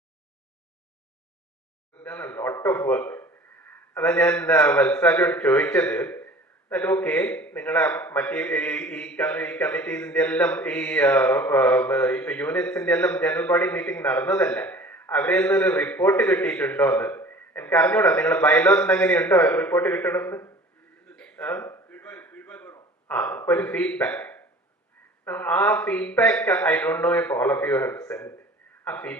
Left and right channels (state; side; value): normal; both; correlation 0.45